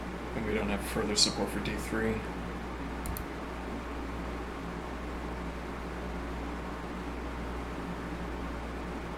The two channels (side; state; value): both; identical; correlation 1.00